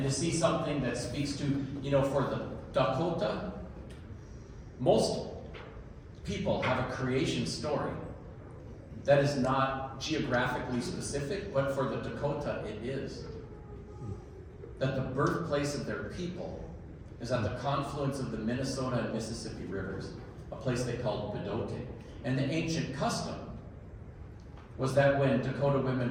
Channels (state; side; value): identical; both; correlation 1.00